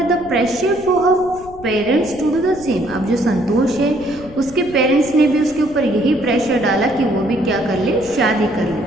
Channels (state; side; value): noise; left; rumble, 19 dB below the sound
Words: the pressure for her parents to do the same. अब जो संतोष है उसके पेरेंट्स ने भी उसके ऊपर यही प्रेशर डाला कि वो भी क्या कर ले? शादी कर